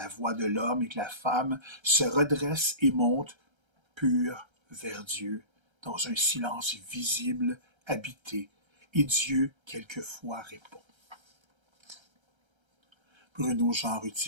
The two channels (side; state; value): left; late; 1.3 ms